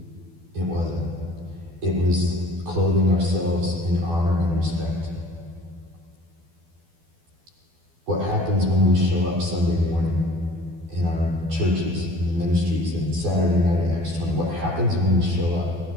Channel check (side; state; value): left; late; 12 ms